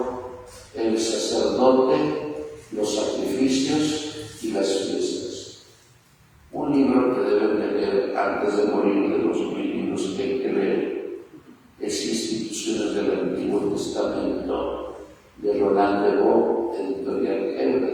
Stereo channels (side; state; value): both; identical; correlation 1.00